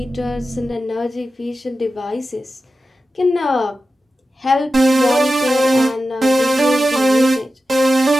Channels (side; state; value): both; normal; correlation 0.93